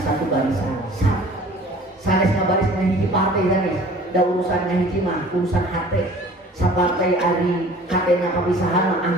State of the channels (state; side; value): normal; both; correlation 0.48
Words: barisan sanes ngabaris na hiji partai sanes da urusan na hiji mah urusan hate sapartai ari katena papisahan mah